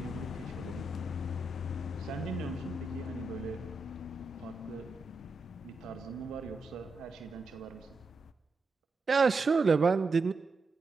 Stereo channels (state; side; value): quieter; left; 3.3 dB